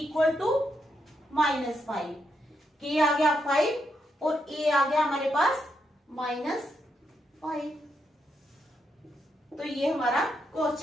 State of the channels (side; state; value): both; normal; correlation 0.80